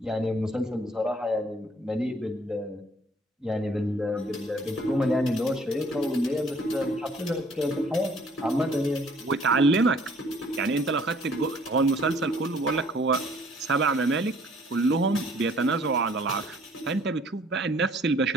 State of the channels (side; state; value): both; normal; correlation 0.58